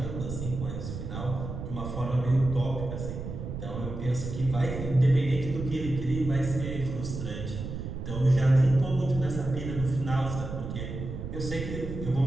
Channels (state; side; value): noise; right; rumble, 7 dB below the sound